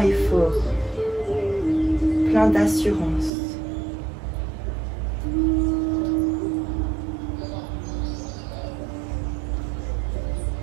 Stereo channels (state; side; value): drops out; left; at 3.3 s